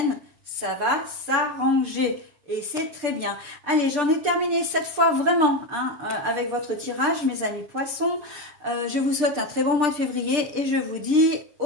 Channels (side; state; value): left; late; 6.7 ms